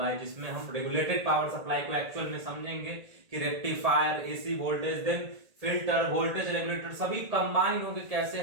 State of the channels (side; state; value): left; late; 1.8 ms